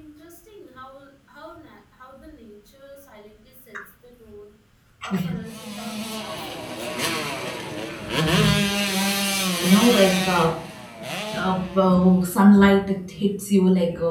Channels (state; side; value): identical; both; correlation 1.00